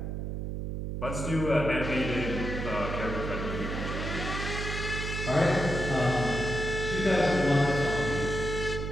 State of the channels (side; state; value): right; noise; hum, 4 dB below the sound